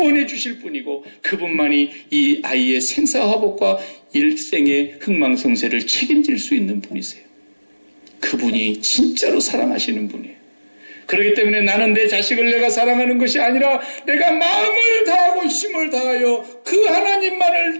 주실 분이고 그분만이 이 아이의 생사화복과 일생의 흥망성쇠를 책임질 수 있는 분이세요. 그분이 진짜로 사랑하시는 분이에요. 그렇기 때문에 나는 내 자식을 내가 사랑하는 것이 아니라 내가 마음을 다하고 힘을 다하여 그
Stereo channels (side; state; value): both; inverted; correlation -1.00